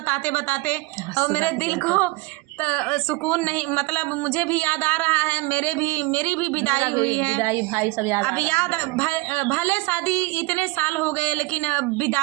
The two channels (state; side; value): quieter; left; 23.7 dB